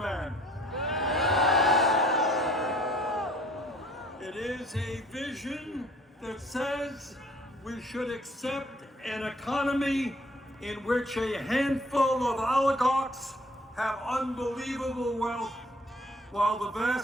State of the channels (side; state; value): both; normal; correlation 0.56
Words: It is a vision that says we should accept an economy in which a handful of oligarchs have unbelievable wealth, while the